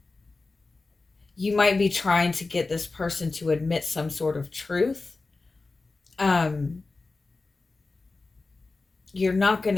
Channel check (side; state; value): right; quieter; 3.7 dB